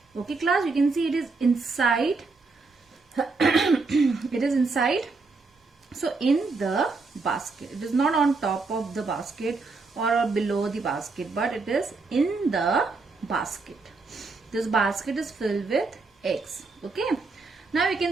Okay class, you can see it is inside. It is inside. So in the basket. It is not on top of the basket or below the basket, but it is in the basket. This basket is filled with eggs. Okay. Now you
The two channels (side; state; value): left; quieter; 3.9 dB